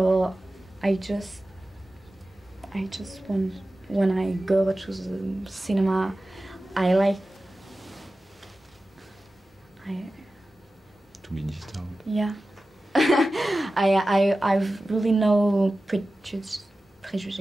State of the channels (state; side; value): normal; both; correlation 0.95